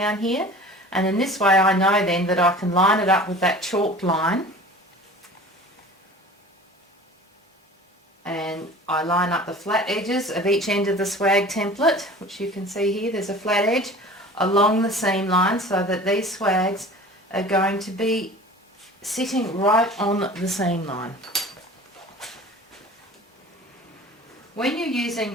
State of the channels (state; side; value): normal; both; correlation 0.41